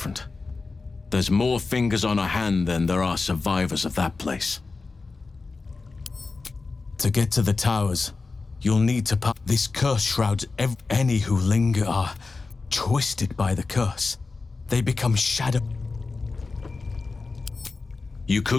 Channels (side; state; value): right; quieter; 4.0 dB